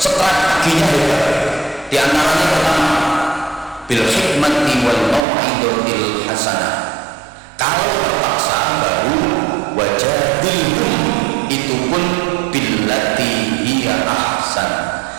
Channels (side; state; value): left; drops out; at 5.2 s